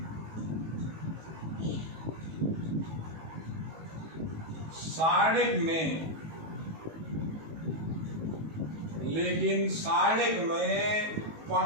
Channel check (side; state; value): left; late; 19 ms